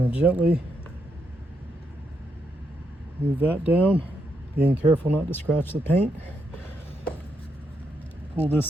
to gently move that down, being careful not to scratch the paint. Pull this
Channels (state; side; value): normal; both; correlation 0.80